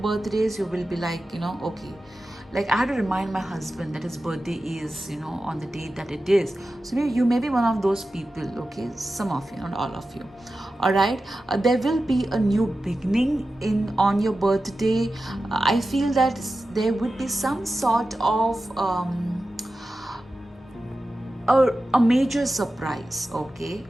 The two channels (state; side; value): normal; both; correlation 0.93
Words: You will be like, okay, like I had to remind my husband that his birthday is, on the date that it is. So maybe you may be one of those people. Okay, some of you, not all of you. All right, there will be a new beginning on your birthday. I feel that there would be some sort of a major surprise. Okay,